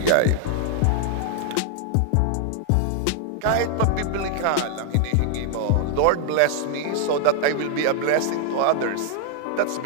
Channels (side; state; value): both; different; correlation 0.00